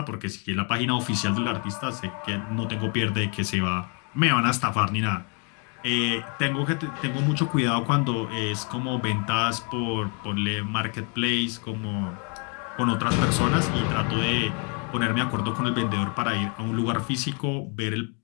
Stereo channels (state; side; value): quieter; right; 37.1 dB